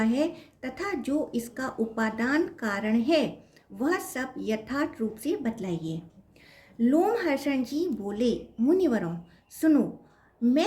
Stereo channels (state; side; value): identical; both; correlation 1.00